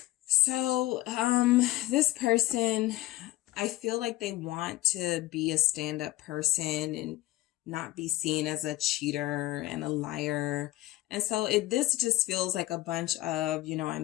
So, this person, I feel like they want to be a stand-up person and not be seen as a cheater and a liar. And so this just feels like a bunch of, you know, I'm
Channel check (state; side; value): quieter; right; 16.9 dB